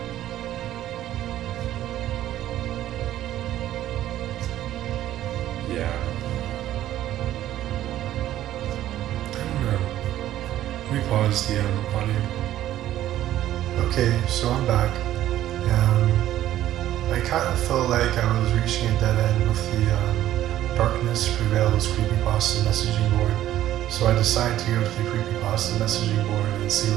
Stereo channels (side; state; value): left; quieter; 13.0 dB